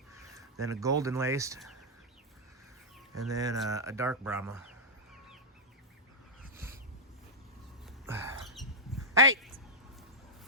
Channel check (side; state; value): both; normal; correlation -0.07